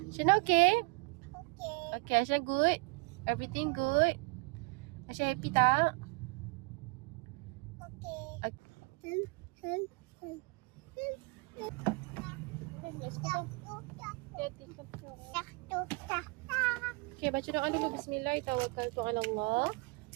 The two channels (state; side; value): quieter; left; 29.4 dB